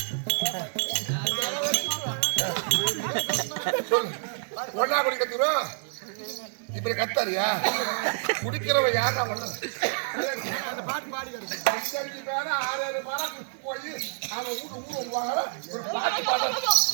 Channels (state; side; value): silent; left; digital silence